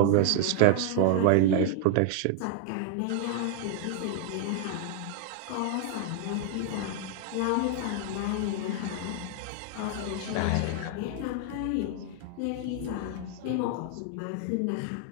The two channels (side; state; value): both; different; correlation -0.01